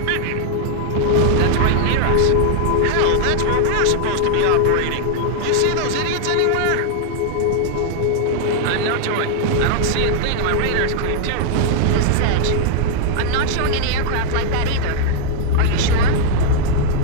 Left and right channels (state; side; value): different; both; correlation 0.00